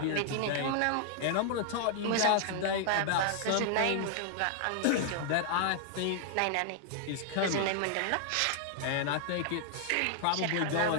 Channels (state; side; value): different; both; correlation 0.00